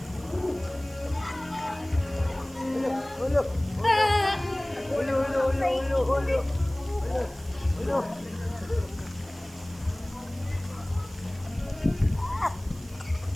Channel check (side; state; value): right; noise; hiss, 22 dB below the sound